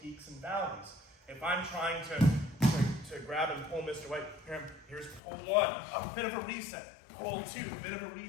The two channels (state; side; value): drops out; right; at 5.2 s